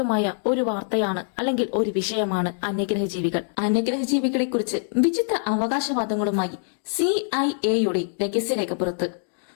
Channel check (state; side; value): silent; right; digital silence